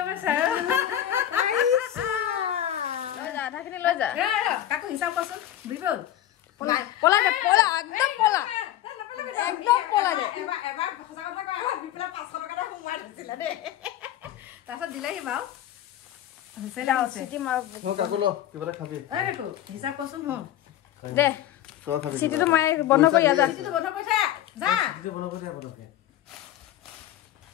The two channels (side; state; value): right; quieter; 12.2 dB